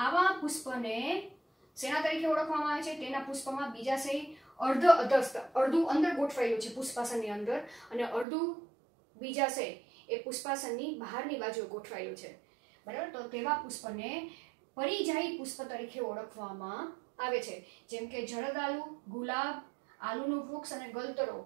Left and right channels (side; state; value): left; drops out; at 8.2 s